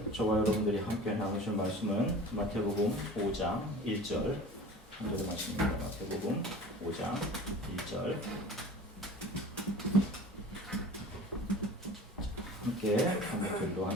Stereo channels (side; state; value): both; normal; correlation 0.40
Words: 저와 여러분들이 함께 나누실 말씀은 마태복음 5장 1절 한 절의 말씀입니다. 마태복음 5장 1절 함께 한목절로